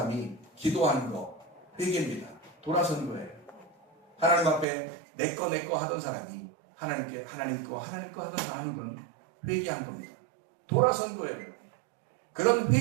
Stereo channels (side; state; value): left; drops out; at 4.7 s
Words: 기도하는 거, 회개입니다. 돌아서는 거예요. 하나님 앞에 내 거 하던 사람이 하나님께 하나님 거 하던 건 회개한 겁니다. 돌아선 거예요. 그런